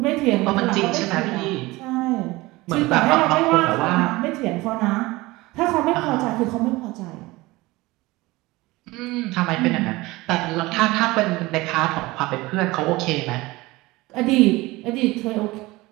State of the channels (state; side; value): quieter; left; 20.7 dB